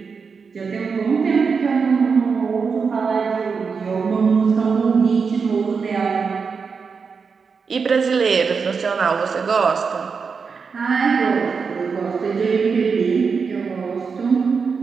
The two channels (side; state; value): left; quieter; 5.4 dB